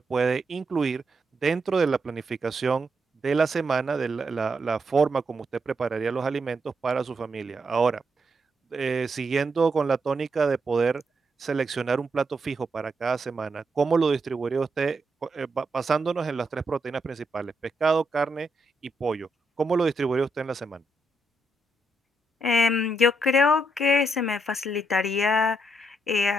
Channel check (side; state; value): both; normal; correlation 0.80